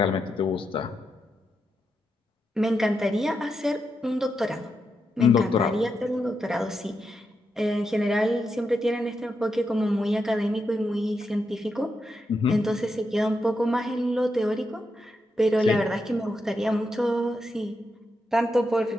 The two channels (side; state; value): both; normal; correlation 0.85